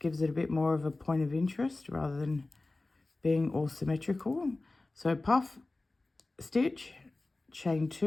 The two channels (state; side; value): quieter; right; 3.1 dB